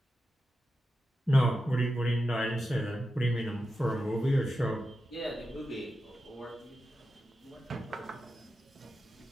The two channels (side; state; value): both; normal; correlation 0.90